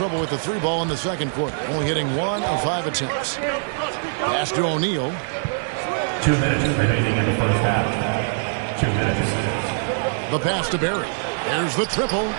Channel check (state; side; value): silent; left; digital silence